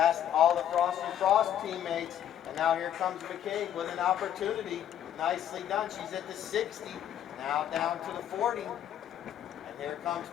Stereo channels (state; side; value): quieter; right; 10.4 dB